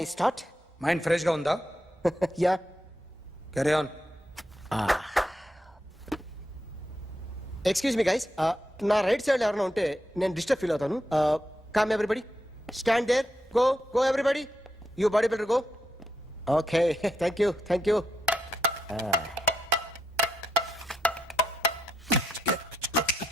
start? Mind fresh గా ఉందా? Yeah. Carry on. Excuse me guys, నా రైట్ సైడ్ ఎవరైనా ఉంటే నేను డిస్టర్బ్ ఫీల్ అవుతాను. Come everybody, stand there, go go everybody, you body builder go. Okay, thank you thank you.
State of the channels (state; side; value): normal; both; correlation 0.81